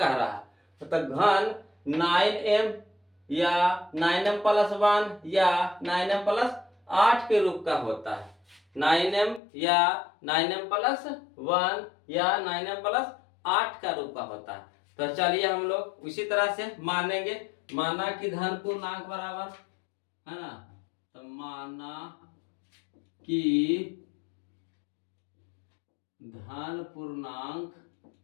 रहा है, तो घन 9m या 9m प्लस 1 या 9m प्लस 8 के रूप का होता है। 9m या 9m प्लस 1 या 9m प्लस 8 का रूप का होता है। तो चलिए हम लोग उसी तरह से मानेंगे, माना कि धन पूर्णांक बराबर, है ना, तो माना कि धन पूर्णांक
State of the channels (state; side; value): drops out; right; at 9.4 s